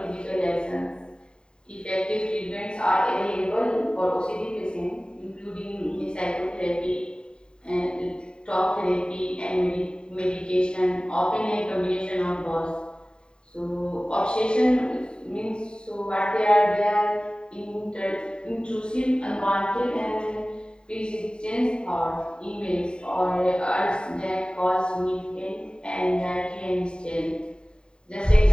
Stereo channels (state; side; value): late; right; 0.049 ms